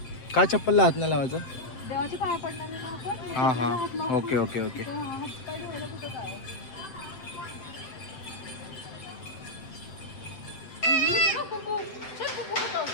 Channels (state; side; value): late; right; 7.8 ms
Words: काय चप्पलला हात नाही लावायचं देवाची पाया पडणार आहे ना आपण. हां हां ओके ओके ओके. तर हात पाय धुवायला कुठं काय? कुकू. चल कुकू होतं.